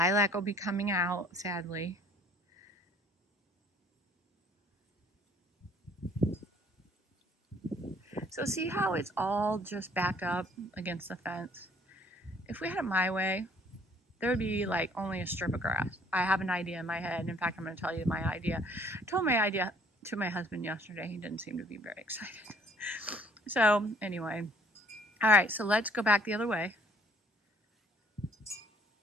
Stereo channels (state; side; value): normal; both; correlation 0.59